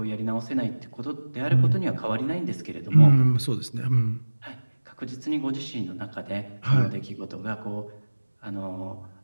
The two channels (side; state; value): both; inverted; correlation -1.00